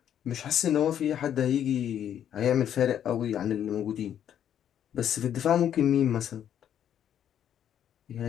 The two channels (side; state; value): right; quieter; 9.8 dB